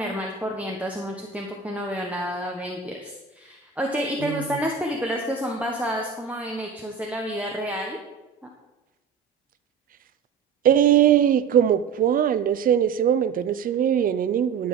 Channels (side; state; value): left; quieter; 6.6 dB